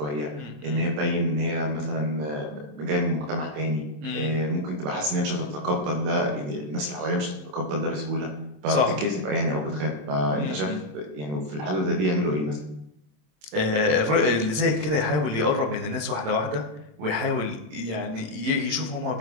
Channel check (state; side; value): late; left; 27 ms